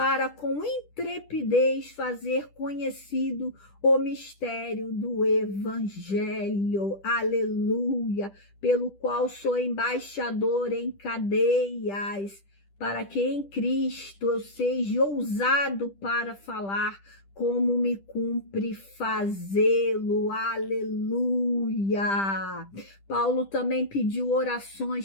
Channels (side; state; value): right; late; 10 ms